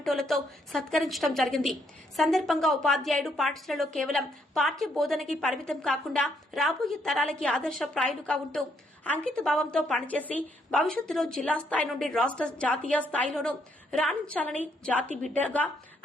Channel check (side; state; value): both; normal; correlation 0.72